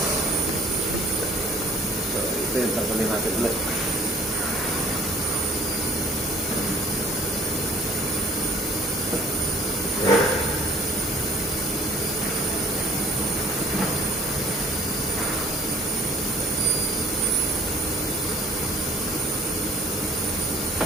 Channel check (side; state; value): both; normal; correlation 0.52